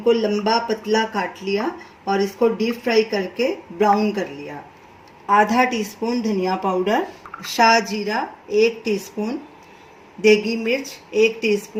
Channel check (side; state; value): both; identical; correlation 1.00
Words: लंबा पतला काट लिया और इसको डीप फ्राई करके ब्राउन कर लिया। आधा टीस्पून धनिया पाउडर, शाह जीरा 1 टीस्पून, देगी मिर्च 1